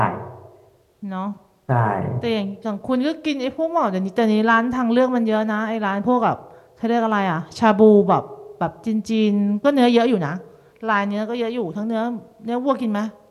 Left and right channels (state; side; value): identical; both; correlation 1.00